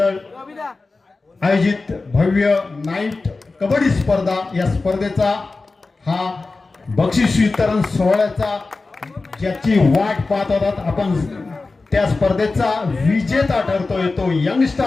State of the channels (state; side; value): quieter; right; 3.7 dB